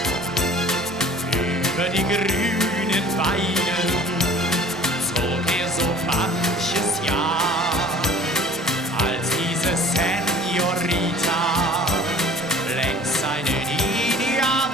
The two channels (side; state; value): both; normal; correlation 0.48